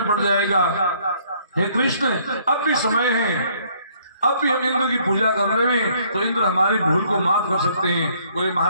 पड़ जाएगा। हे कृष्ण, अब भी समय है, अब भी हम इंद्र की पूजा कर रहे हैं तो इंद्र हमारी भूल को माफ कर सकते हैं। बोले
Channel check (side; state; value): both; inverted; correlation -0.64